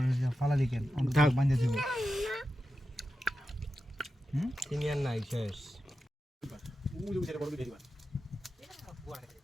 ফালা লিখেন বান্ধে দিব তিনি আর নাই শেষ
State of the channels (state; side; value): normal; both; correlation 0.91